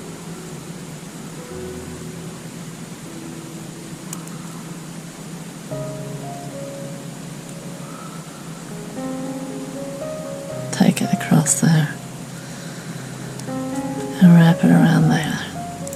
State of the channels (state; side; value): identical; both; correlation 1.00